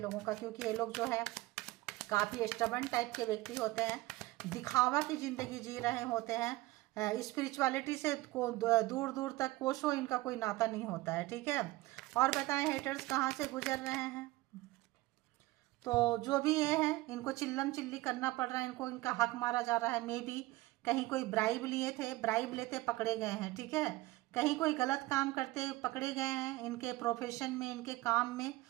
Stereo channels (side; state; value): left; quieter; 19.3 dB